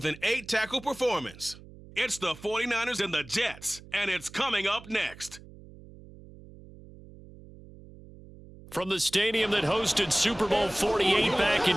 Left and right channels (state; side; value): noise; right; hum, 19 dB below the sound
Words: an 8-tackle performance. It's the 49ers and the Jets, and it's coming up next. From the stadium that hosted Super Bowl 48 back